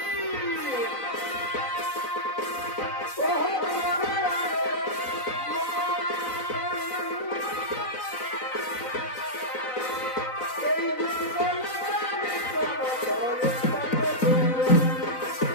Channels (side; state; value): right; late; 4.0 ms